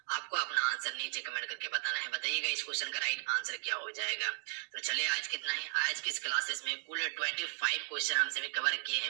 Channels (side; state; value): left; silent; 54 dB below the other